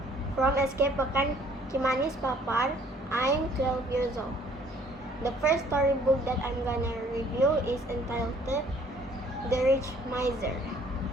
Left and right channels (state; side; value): normal; both; correlation 0.59